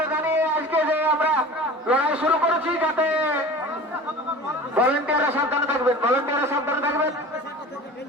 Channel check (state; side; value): normal; both; correlation 0.39